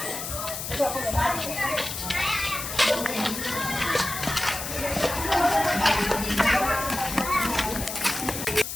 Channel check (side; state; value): left; noise; hiss, 6 dB below the sound